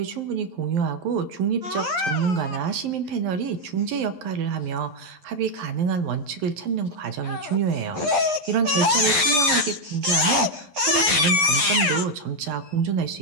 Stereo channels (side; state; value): left; late; 11 ms